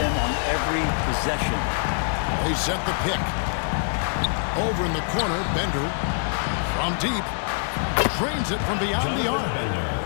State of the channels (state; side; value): silent; right; 57 dB below the other